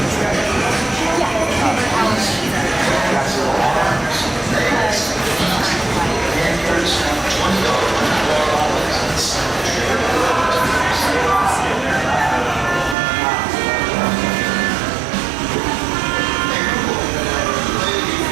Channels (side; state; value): left; drops out; at 13.0 s